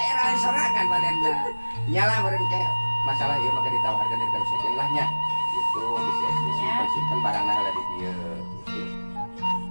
serangan badanna. Nyala meureun ke masalah ieu mah ditawarkeun terus aja lah nya. Gitu bisa disimpen barangna lah di dieu.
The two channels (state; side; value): inverted; both; correlation -1.00